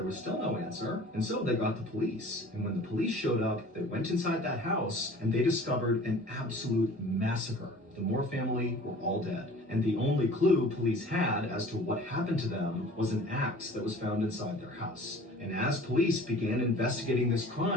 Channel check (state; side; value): normal; both; correlation 0.45